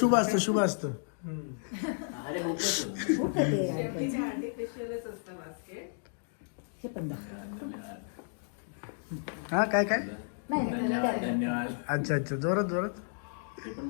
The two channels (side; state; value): right; silent; digital silence